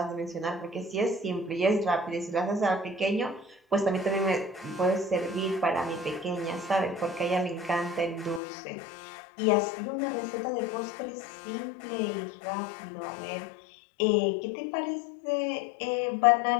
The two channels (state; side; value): drops out; right; at 8.4 s